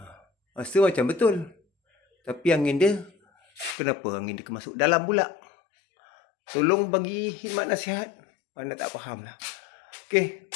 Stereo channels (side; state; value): right; drops out; at 3.8 s